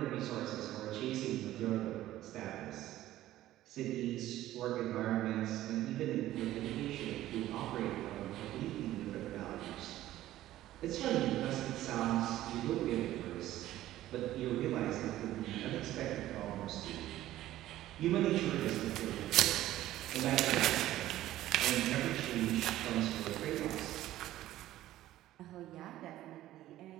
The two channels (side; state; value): left; quieter; 14.4 dB